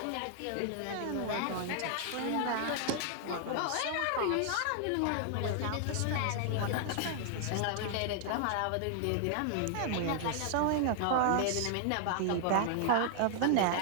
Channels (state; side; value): different; both; correlation 0.00